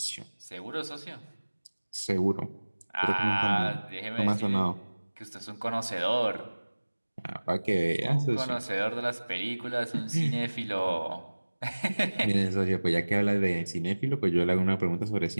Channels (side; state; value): both; inverted; correlation -1.00